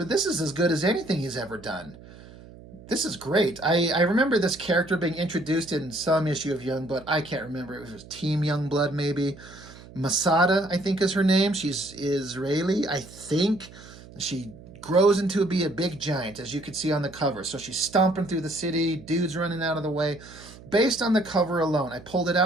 this is as good as anything he's ever done. This is great. I remember this character being introduced in some issue of Youngblood. I can't remember. It was Team Youngblood, maybe. Masada, I think, is her name. She's Israeli, I think. She grows into be a big giant, as you could see on the cover. So she's stomping through the city, dudes running out of the way. Based on the cover alone, I pulled it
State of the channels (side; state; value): right; noise; hum, 19 dB below the sound